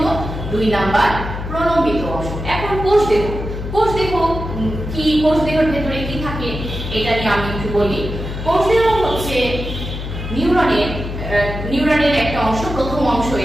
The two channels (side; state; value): left; noise; hum, 7 dB below the sound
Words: 2 নাম্বার প্রলম্বিত অংশ। এখন কোষদেহ কি, কোষদেহের ভেতরে কি থাকে এটা নিয়ে আমি একটু বলি। কোষদেহ হচ্ছে নিউরনের একটা অংশ, প্রথম অংশ